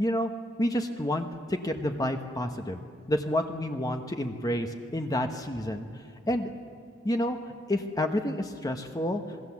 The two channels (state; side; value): normal; both; correlation 0.76